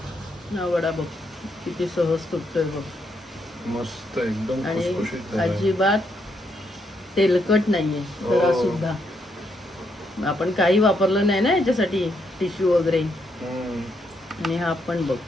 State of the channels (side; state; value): both; normal; correlation 0.77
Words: हा वडा बघ किती सहज तुटतोय बघ. मस्त एकदम आणि खुसखुशीत झालाय. अजिबात तेलकट नाहीये जरा सुद्धा. आपण काही वापरलं नाही ना याच्यासाठी टिश्यू वगैरे. आणि हा पण बघ